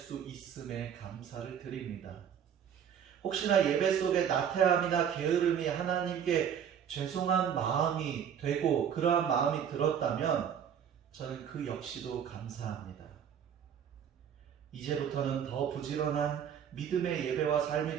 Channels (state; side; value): quieter; left; 8.5 dB